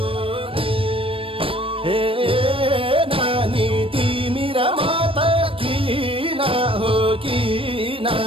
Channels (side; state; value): left; late; 0.26 ms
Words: हे नानी तिमी र म त किन हो किन